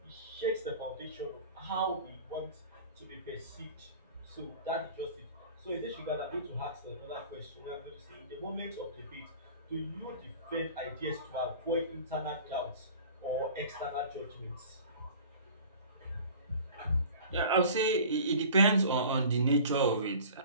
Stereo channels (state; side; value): inverted; both; correlation -0.43